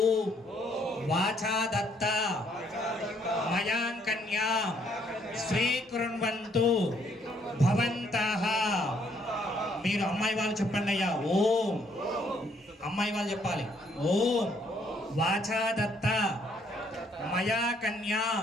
వాచా దత్త మయాం కన్యా స్వీకృణ్వంతు భవంతః. మీరు అమ్మాయి వాళ్ళు చెప్పండి అయ్యా. ఓం అమ్మాయి వాళ్ళు చెప్పాలి. ఓం వాచా దత్త మయా కన్యా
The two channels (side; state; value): both; normal; correlation 0.68